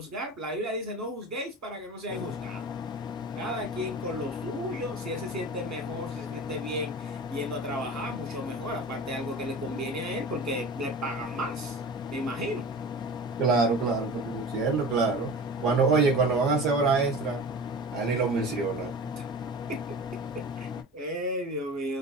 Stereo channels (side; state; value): both; normal; correlation 0.35